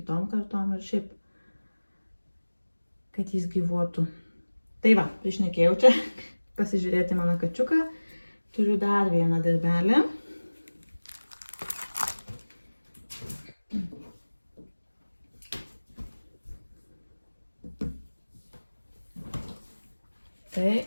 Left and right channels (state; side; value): inverted; both; correlation -1.00